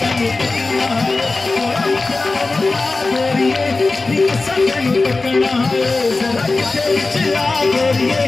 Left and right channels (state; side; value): quieter; right; 3.5 dB